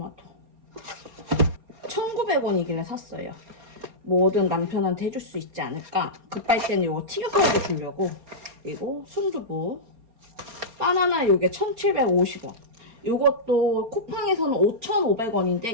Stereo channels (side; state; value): left; late; 4.3 ms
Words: 1,900원이길래 샀어요. 뭐든 남편한테 해줄 수 있지 않을까. 급할 때는 요거 튀겨서라도 주려고. 그리고 순두부 바나나 요게 1,750원. 요것도 쿠팡에서는